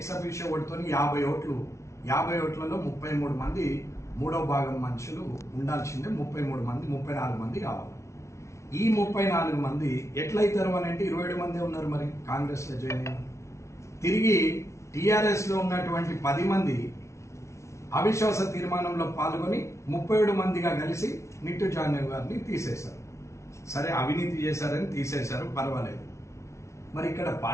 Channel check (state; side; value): late; right; 0.14 ms